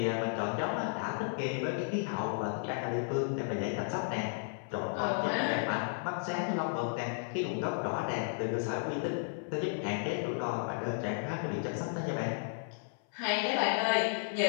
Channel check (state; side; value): silent; right; 55 dB below the other